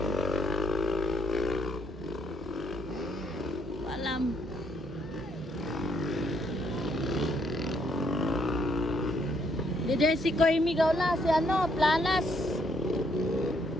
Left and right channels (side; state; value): both; normal; correlation 0.72